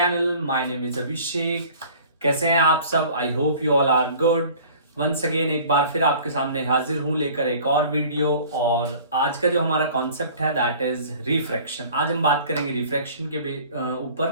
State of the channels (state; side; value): inverted; both; correlation -0.47